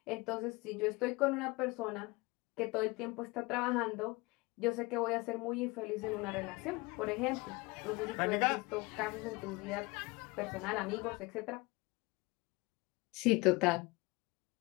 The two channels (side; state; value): right; quieter; 24.3 dB